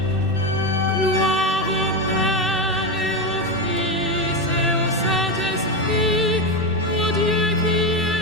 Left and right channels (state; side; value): normal; both; correlation 0.13